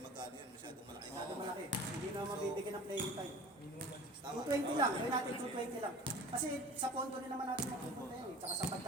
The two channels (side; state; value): both; normal; correlation 0.41